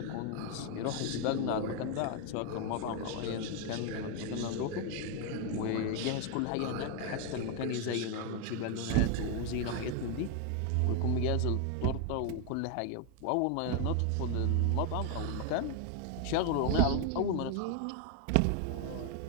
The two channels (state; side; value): different; both; correlation 0.01